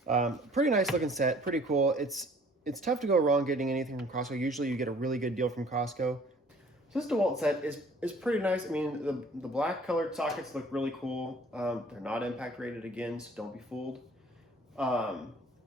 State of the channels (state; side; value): normal; both; correlation 0.54